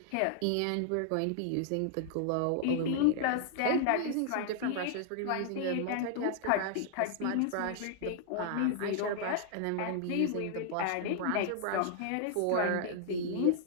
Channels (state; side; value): different; both; correlation 0.00